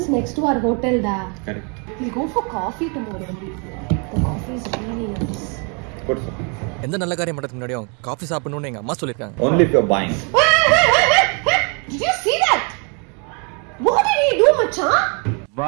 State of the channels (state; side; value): quieter; left; 35.5 dB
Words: next to our hotel da correct we'll go for coffee tomorrow the coffee is really nice ಕೊಡ್ಸು எந்த நல்ல காரியம் பண்றதுக்கு முன்னாடியும் காஃபி சாப்பிடணும்னு எங்க அம்மா சொல்லிருக்காங்க only if you're buying did you see that what did he do macha